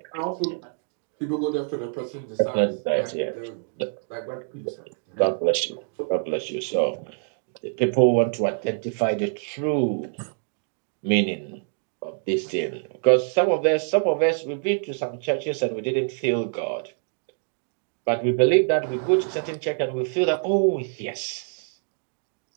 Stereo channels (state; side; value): silent; left; digital silence